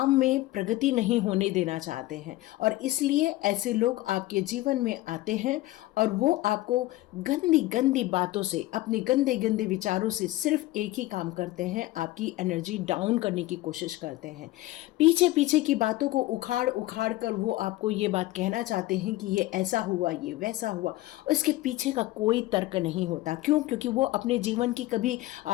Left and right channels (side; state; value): right; quieter; 17.6 dB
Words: में प्रगति नहीं होने देना चाहते हैं। और इसलिए ऐसे लोग आपके जीवन में आते हैं और वो आपको गंदी गंदी बातों से, अपने गंदे गंदे विचारों से सिर्फ एक ही काम करते हैं, आपकी एनर्जी डाउन करने की कोशिश करते हैं। पीछे पीछे की बातों को उखाड़ उखाड़ कर वो आपको ये बात कहना चाहते हैं कि ये ऐसा हुआ, ये वैसा हुआ। उसके पीछे का कोई तर्क नहीं होता। क्यों? क्योंकि वो अपने जीवन की कभी,